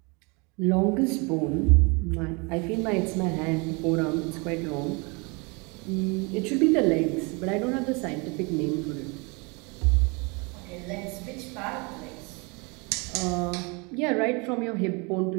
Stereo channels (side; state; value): left; quieter; 29.8 dB